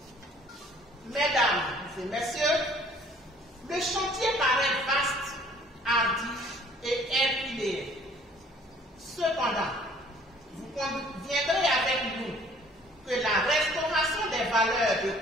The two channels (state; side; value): normal; both; correlation 0.56